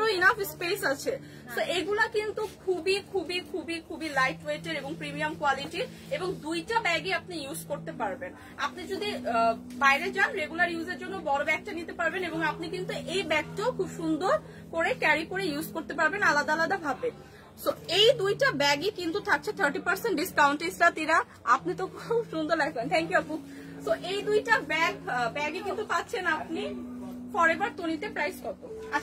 ইনাফ স্পেস আছে। তো এগুলা কিন্তু খুবই খুবই খুবই খুবই লাইট ওয়েটের এবং প্রিমিয়াম কোয়ালিটির, এবং দুইটা ব্যাগই আপনি ইউজ করতে পারবেন। আপনি যদি বাইরে যান রেগুলার ইউজের জন্য বড় ব্যাগটা নিতে পারবেন, এবং আপনি কিন্তু এই ব্যাগটাও খুব সুন্দর করে ক্যারি করে ইউজ করতে পারবেন আলাদা আলাদা ভাবে। সো এই দুইটা ব্যাগই কিন্তু থাকছে 30% ডিসকাউন্ট। ইসরাতিরা, আপনি তো খুব সুন্দর লাগবেন, থ্যাংক ইউ আপু। সো এই দুইটা ব্যাগই কিন্তু পাচ্ছেন আপনি ফরএভার তনিতে। প্রাইস কত?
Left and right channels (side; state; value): both; identical; correlation 1.00